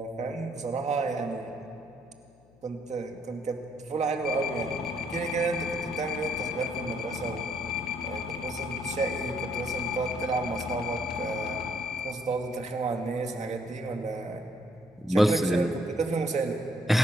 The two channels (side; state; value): left; noise; hum, 28 dB below the sound